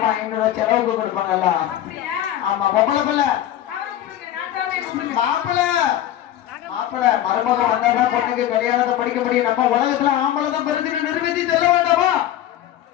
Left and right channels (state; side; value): quieter; right; 12.2 dB